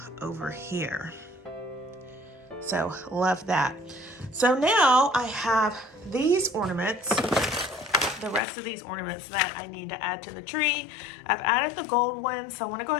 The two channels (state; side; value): drops out; right; at 8.4 s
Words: over here. So love that. So now I have these ornaments, the rest of these ornaments that I need to add to the tree. I've added the gold one, so I want to go